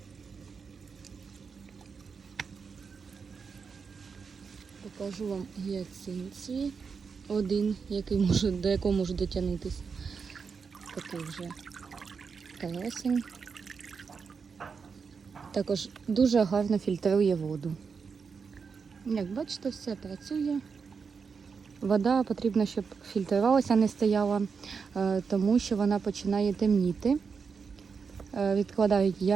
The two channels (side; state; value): left; quieter; 5.6 dB